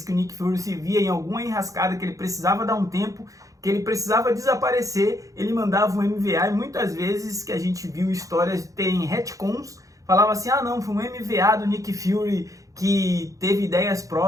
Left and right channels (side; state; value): left; late; 0.16 ms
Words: que o Nick Fury se via em alguma enrascada que ele precisava dar um tempo, que ele precisava desaparecer, ele mandava um MVA, e muitas vezes que a gente viu histórias terem retcons, falava assim, ah não, foi um MVA do Nick Fury que teve ideias